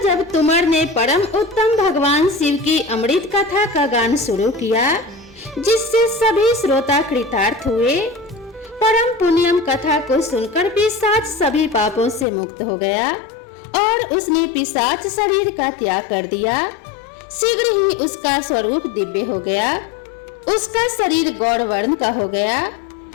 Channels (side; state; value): right; drops out; at 12.2 s